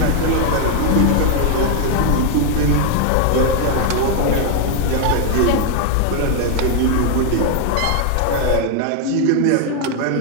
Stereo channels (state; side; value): different; both; correlation 0.00